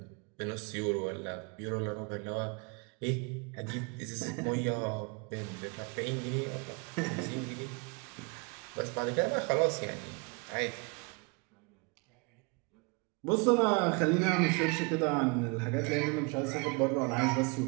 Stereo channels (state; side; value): quieter; left; 31.2 dB